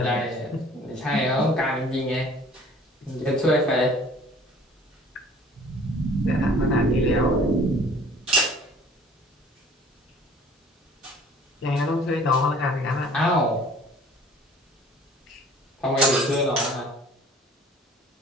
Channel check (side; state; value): both; normal; correlation 0.50